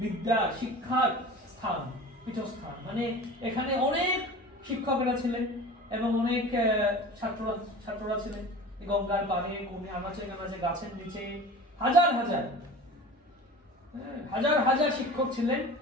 বিদ্যা শিক্ষার স্থান, পীঠস্থান, মানে এখানে অনেক শিক্ষকেরা ছিলেন এবং অনেক ছাত্ররা ছিলেন। গঙ্গার পাড়ে, কোণে, আনাচে কানাচে, গাছের নিচে হাজার হাজার হাজার হাজার শিক্ষক ছিলেন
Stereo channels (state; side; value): normal; both; correlation 0.37